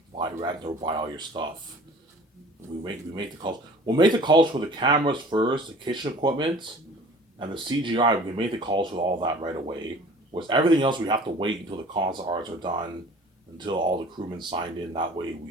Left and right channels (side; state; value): both; normal; correlation 0.46